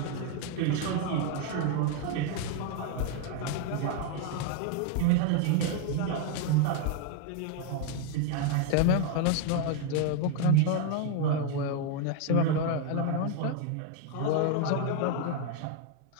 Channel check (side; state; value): both; different; correlation 0.00